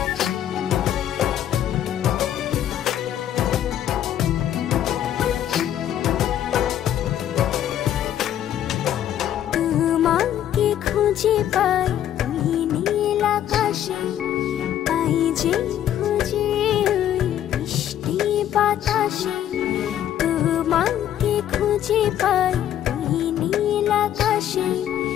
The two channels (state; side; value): quieter; right; 11.0 dB